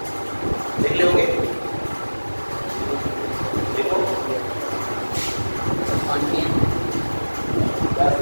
देख लियोगे देखो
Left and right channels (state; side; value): inverted; both; correlation -1.00